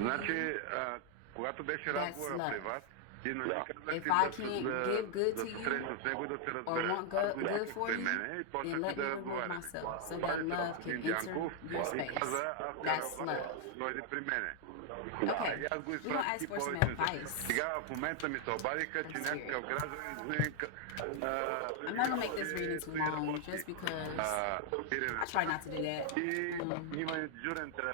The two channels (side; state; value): both; different; correlation 0.00